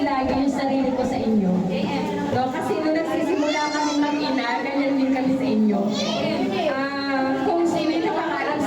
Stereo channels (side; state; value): both; identical; correlation 1.00